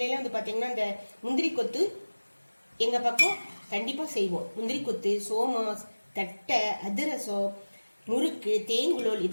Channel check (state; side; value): inverted; both; correlation -1.00